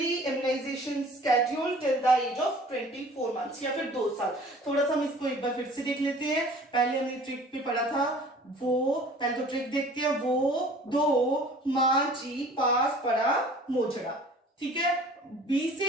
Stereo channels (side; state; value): both; normal; correlation 0.48